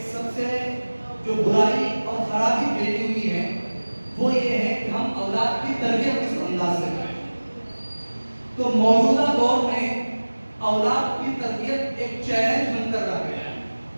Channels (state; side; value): inverted; both; correlation -1.00